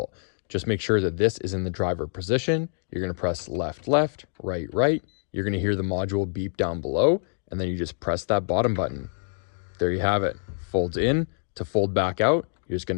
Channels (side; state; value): right; silent; digital silence